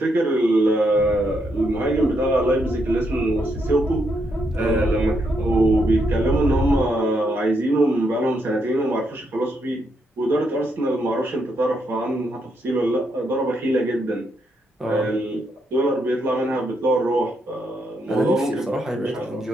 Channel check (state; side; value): normal; both; correlation 0.78